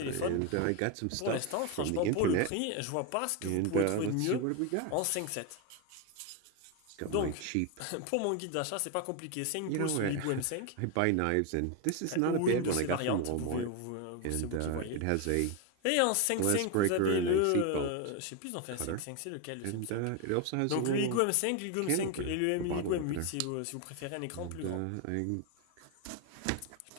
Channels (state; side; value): different; both; correlation 0.01